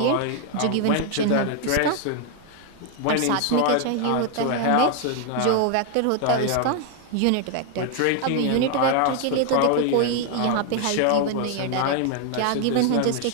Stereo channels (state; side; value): different; both; correlation 0.00